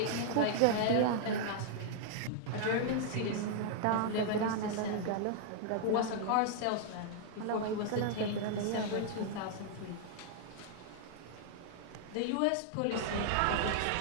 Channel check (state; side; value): different; both; correlation -0.01